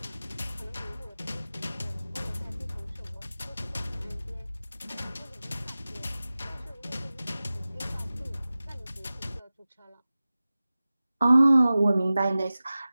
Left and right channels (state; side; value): inverted; both; correlation -0.96